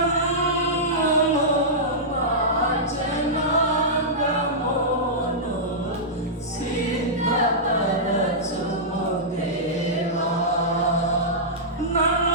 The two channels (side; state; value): both; normal; correlation -0.14